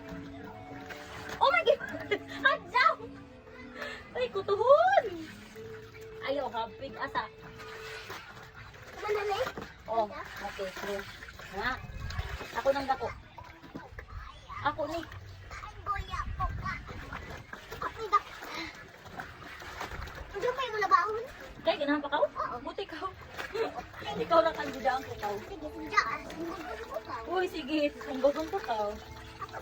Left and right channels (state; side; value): identical; both; correlation 1.00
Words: Oh my God. Hadjaw. Ay, kutuhon. Ayaw, hapig asa. Manalay? Oh, okay. Sige. Nga. Ako nang dako. Ako ni. Ay, boya po ka. Ako da. Ano pa yung labahon? Kaya ganahan pa ka? Oo. Buti ka. Ikaw lang ang gudaan ko ka. Sige, sundaan. Sundaan mo ka. Uy, sige. Sumbagon ko ka. Ako